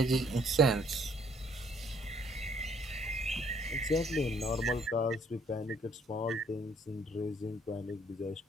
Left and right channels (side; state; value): both; normal; correlation 0.63